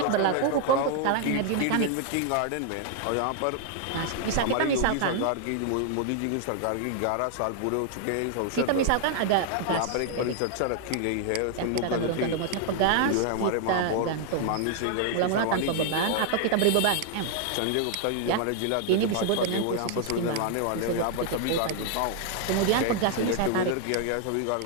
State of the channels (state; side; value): different; both; correlation 0.00